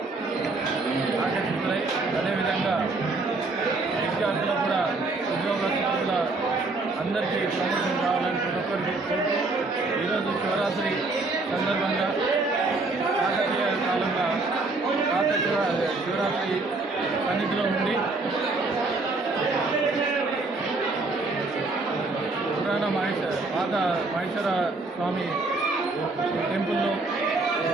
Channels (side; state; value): left; quieter; 3.4 dB